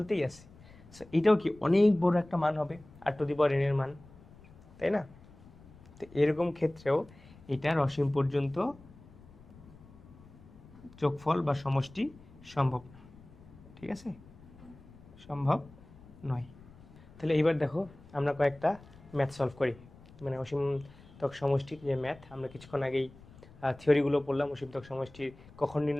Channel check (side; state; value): left; noise; rumble, 22 dB below the sound